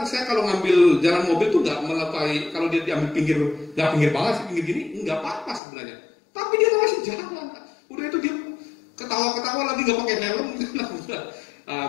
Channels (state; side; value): drops out; right; at 5.6 s